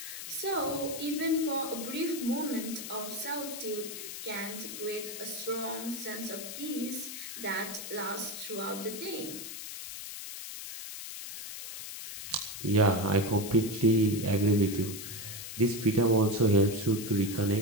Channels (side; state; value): left; noise; hiss, 9 dB below the sound